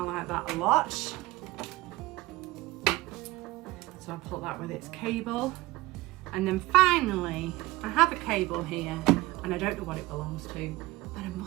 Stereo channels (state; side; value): quieter; left; 18.9 dB